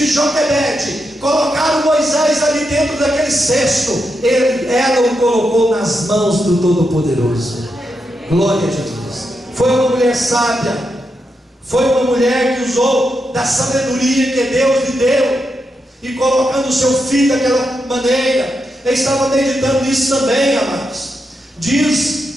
Joquebede colocar o Moisés ali dentro daquele cesto, ela o colocou nas mãos do Todo-Poderoso. Glória a Jesus. Foi uma mulher sábia, foi uma mulher que usou da sabedoria que Deus lhe deu, e colocando o seu filho daquela maneira. Eu estava meditando nisso também, amados.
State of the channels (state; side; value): normal; both; correlation 0.85